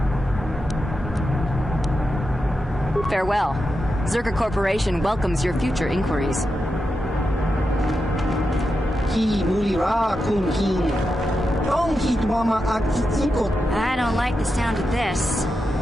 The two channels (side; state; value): both; normal; correlation 0.88